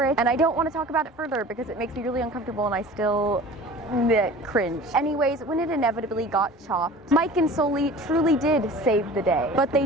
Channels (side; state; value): both; normal; correlation 0.41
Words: it. And I don't want to talk about it further because it makes me really uncomfortable and I still cringe. Anyways, when it inevitably got chopped, Mike and Sully truly did save the day, but